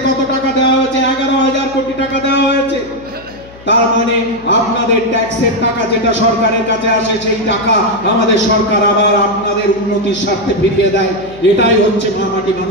কত টাকা দেওয়া হয়েছে? 11,000 কোটি টাকা দেওয়া হয়েছে। তার মানে আপনাদের ট্যাক্সের টাকা যেটা সরকারের কাছে আসে, সেই টাকা আমাদের সরকার আবার আপনাদের উন্নতির স্বার্থে ফিরিয়ে দেয়। এটাই হচ্ছে মামাটি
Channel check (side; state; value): left; noise; hum, 21 dB below the sound